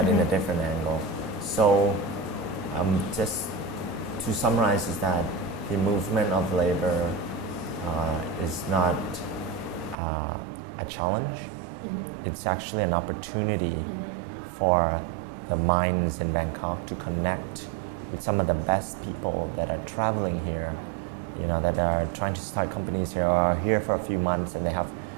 in a different angle. So just to summarize, is that the movement of labor is not a challenge. It's actually an opportunity for the minds in Bangkok to connect with some of the best people that are traveling here, that are trying to start companies here, or are here for a few months, and they have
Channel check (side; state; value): left; drops out; at 10.0 s